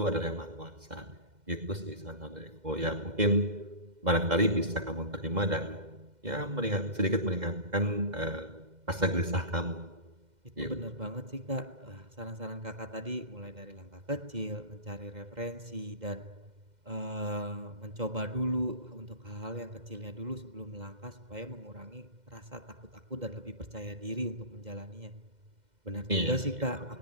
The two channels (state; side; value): late; left; 2.1 ms